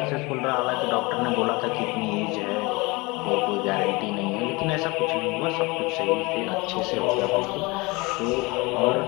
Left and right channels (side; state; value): right; quieter; 24.9 dB